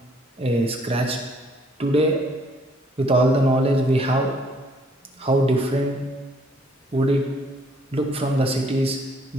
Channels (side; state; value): both; normal; correlation 0.64